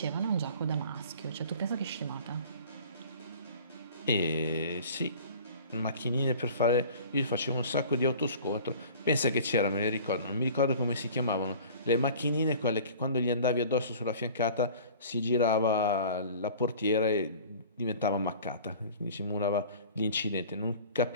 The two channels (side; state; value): both; inverted; correlation -0.44